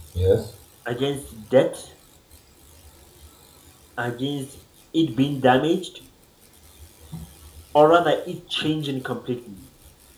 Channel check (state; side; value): identical; both; correlation 1.00